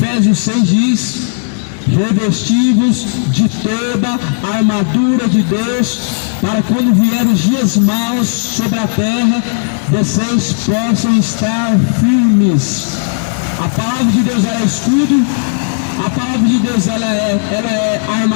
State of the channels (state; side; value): silent; right; digital silence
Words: 6 diz: revestivos de toda a armadura de Deus, para quando vier os dias maus sobre a terra, vocês possam estar firmes. A palavra de Deus é escudo, a palavra de Deus ela é